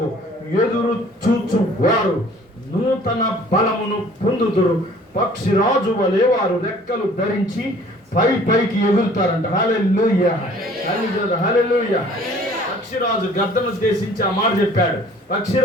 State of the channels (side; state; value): both; normal; correlation 0.53